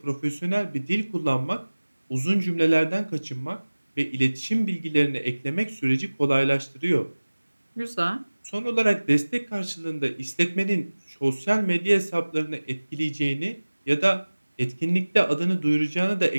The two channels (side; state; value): both; inverted; correlation -1.00